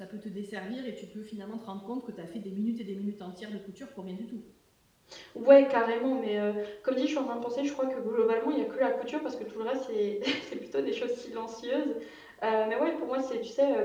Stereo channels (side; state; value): both; identical; correlation 1.00